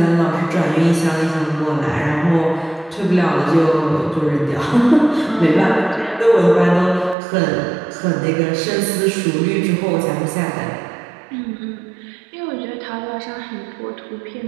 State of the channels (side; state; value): left; drops out; at 7.2 s